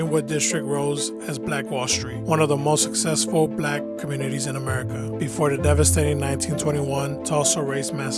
District rose as Black Wall Street, one of the most successful black communities in America, before the devastating 1921 Tulsa Race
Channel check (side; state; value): both; identical; correlation 1.00